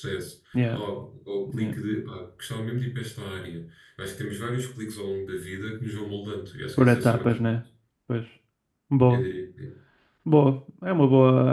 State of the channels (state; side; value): identical; both; correlation 1.00